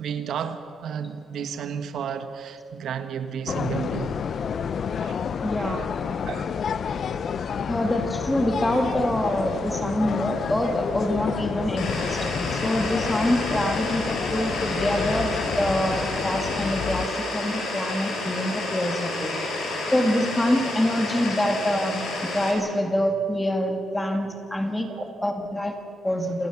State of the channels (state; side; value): normal; both; correlation 0.84